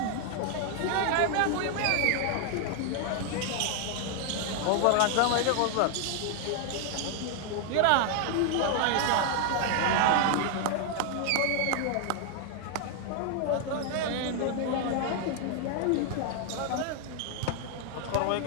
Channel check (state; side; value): different; both; correlation 0.00